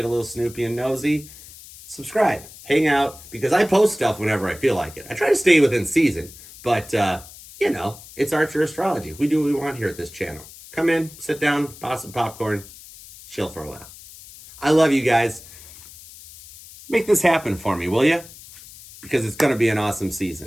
a little snoopy and nosy, subscribe. Hang out, because I post stuff whenever I feel like it. I try to stay within season, but, it's Archer Astrology. We do what we want here at this channel. Come in, sit down, pop some popcorn, chill for a while. I love you guys. Make this happen for me, will you? Because it's going to be an awesome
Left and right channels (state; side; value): noise; left; hiss, 18 dB below the sound